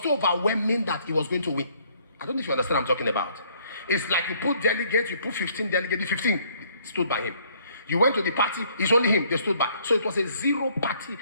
overwhelming that he was going to win. I don't know if you understand what I'm talking about. It's like you put delegates, you put 15 delegates, the 15 stood by him. You went to the party, it's only him, they stood by. So it was a zero party.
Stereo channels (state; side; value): inverted; both; correlation -0.63